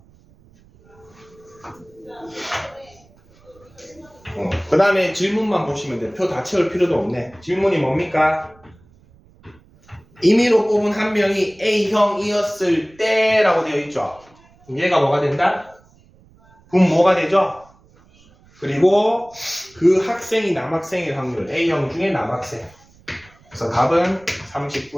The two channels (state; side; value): noise; right; rumble, 29 dB below the sound